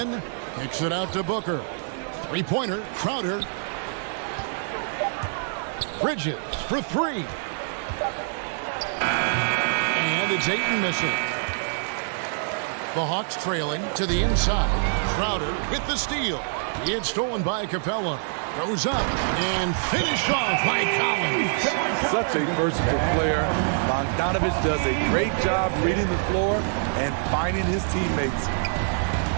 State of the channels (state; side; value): silent; left; digital silence